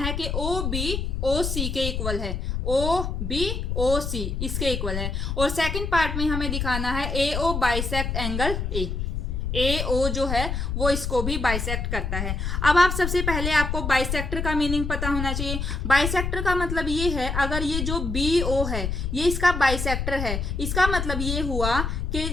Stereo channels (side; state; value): left; noise; rumble, 2 dB below the sound